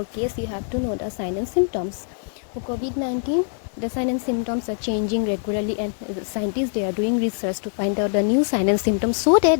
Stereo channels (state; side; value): silent; right; 62 dB below the other